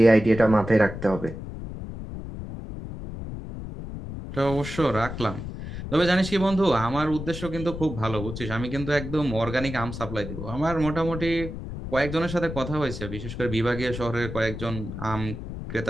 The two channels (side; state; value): left; noise; rumble, 8 dB below the sound